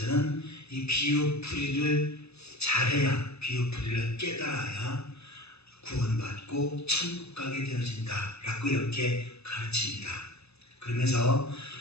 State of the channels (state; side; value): late; right; 0.79 ms